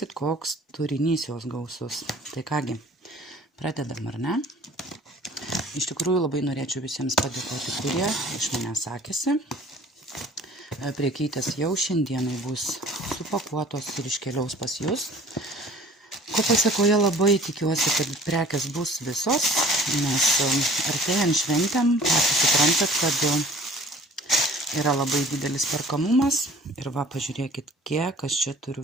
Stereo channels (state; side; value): normal; both; correlation 0.49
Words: koks turinys jos gausus. Tai kągi, pradedam, ar ne? Iš tikrųjų, labai norėčiau visiems padėkoti, kurie iš manęs sakėsi. Priekytės jau šiandienai bus supakuotos ir iškeliaus pas jūs. Ko pasekoje labai tikiuosi, kad prekės bus visos, nes artėjant šventėm, patys suprantat, kad yra labai didelis perkamumas. Ir va, pažiūrėkit, kiek aš čia turiu